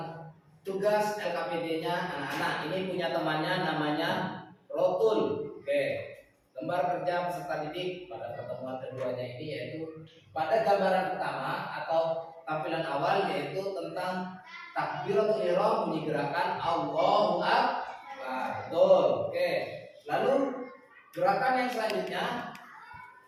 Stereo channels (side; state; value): both; identical; correlation 1.00